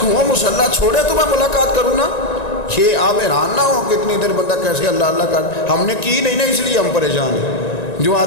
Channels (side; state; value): right; late; 1.9 ms